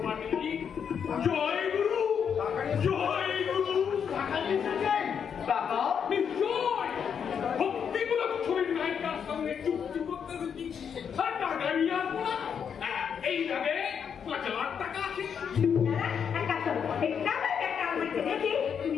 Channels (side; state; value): right; quieter; 7.4 dB